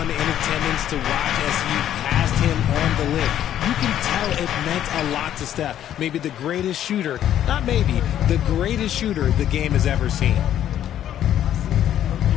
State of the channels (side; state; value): right; quieter; 11.1 dB